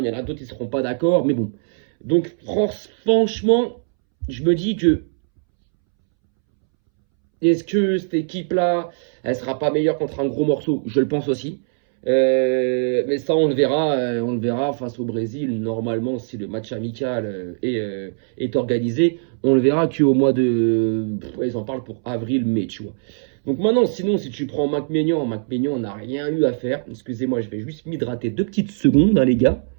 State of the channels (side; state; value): left; silent; 65 dB below the other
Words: y en a d'autres qui ne seront pas d'accord, mais bon. Donc, franchement, je me dis que est-ce que cette équipe-là, elle sera pas meilleure contre un gros morceau? Je le pense aussi. Mais ça, on le verra face au Brésil. Normalement, si le match amical est organisé, on le verra qu'au mois de. Ils en parlent pour avril-mai, tu vois. Donc maintenant, sinon, si tu prends Mac Maignan n'a rien eu à faire. Excusez-moi, je vais juste m'hydrater 2 petites secondes, hein, les gars.